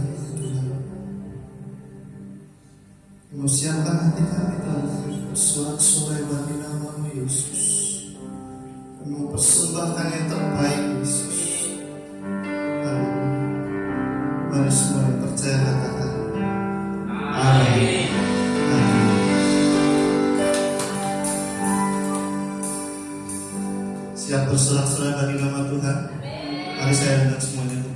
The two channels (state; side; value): identical; both; correlation 1.00